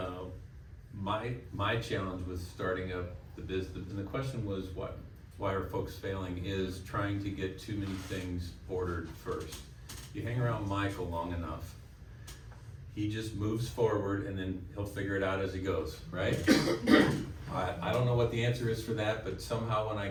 my challenge with starting up the business, and the question was why are folks failing, is trying to get too many things ordered first. You hang around Michael long enough, he just moves forward and then he'll figure it out as he goes, right? I don't know what the answer is for that, but somehow when I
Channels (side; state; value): both; identical; correlation 1.00